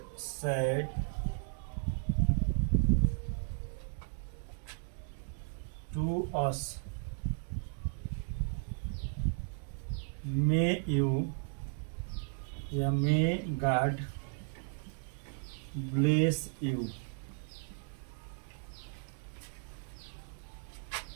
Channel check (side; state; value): left; silent; 54 dB below the other